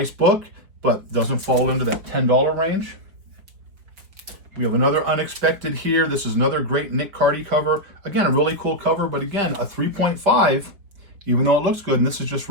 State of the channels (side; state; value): left; late; 4.8 ms